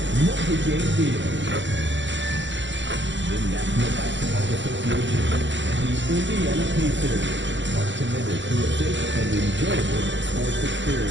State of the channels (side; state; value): left; late; 0.54 ms